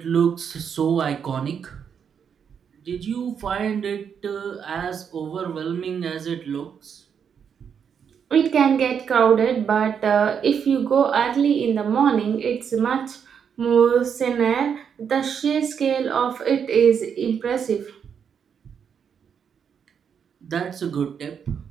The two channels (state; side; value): quieter; left; 7.4 dB